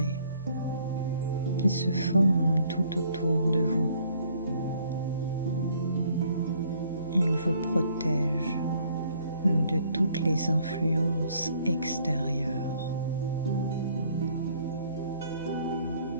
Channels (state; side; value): inverted; both; correlation -0.63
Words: qui se forme tout autour de vous. Il vous protège de toutes les influences extérieures.